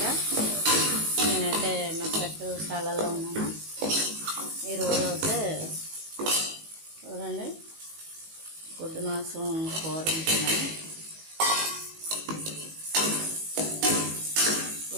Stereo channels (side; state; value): left; late; 19 ms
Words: నేనైతే మెక్కశాలలో ఉన్నాను. ఈరోజు అయితే చూడండి, గుడ్డు మాంసం కూర ఉంటున్నాను.